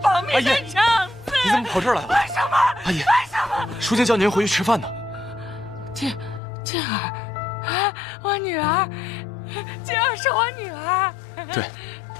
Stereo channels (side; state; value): right; drops out; at 6.4 s